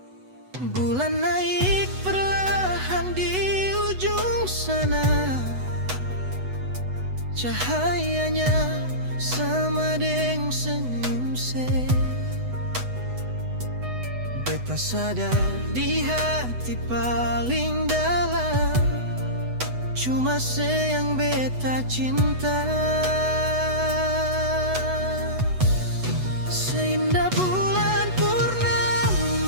Bulan naik perlahan di ujung sana, cahayanya sama deng senyum se. Beta sadar di hati paling dalam, cuma se yang beta cinta. Seindah bulan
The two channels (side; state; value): left; late; 8.1 ms